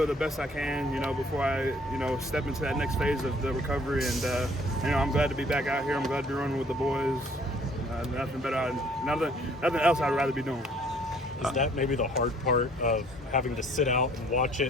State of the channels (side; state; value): both; normal; correlation 0.59